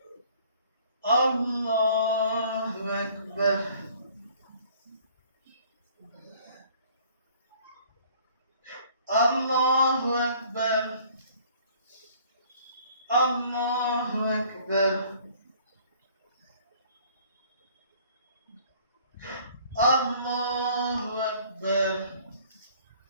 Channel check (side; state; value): both; inverted; correlation -0.55